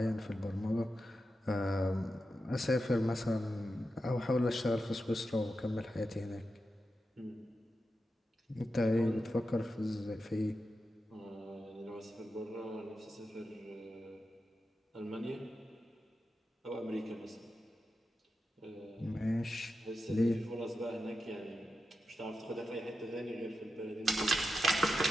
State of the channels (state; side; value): normal; both; correlation 0.90